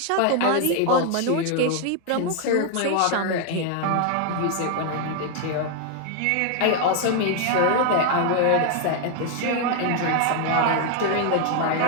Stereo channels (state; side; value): different; both; correlation 0.00